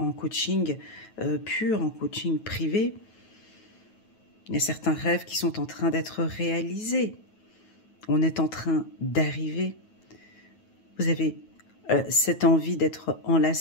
coaching pur, en coaching privé, il y a certains rêves qui sont en train d'être réalisés. On est en train d'arriver. Vous avez cette envie d'être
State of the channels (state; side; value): late; right; 9.2 ms